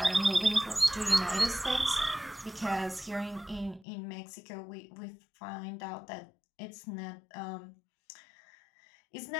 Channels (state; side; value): drops out; right; at 3.9 s